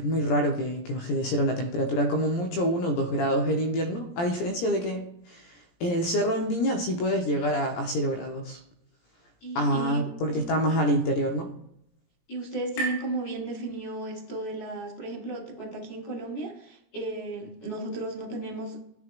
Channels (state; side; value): late; right; 17 ms